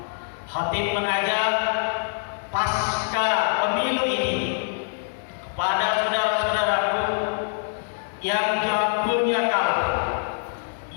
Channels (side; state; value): right; silent; digital silence